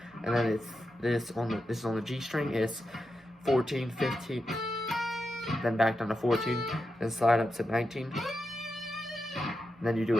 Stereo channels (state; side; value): normal; both; correlation 0.88